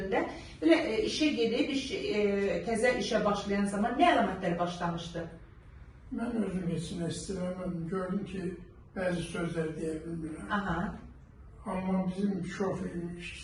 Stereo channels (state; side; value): identical; both; correlation 1.00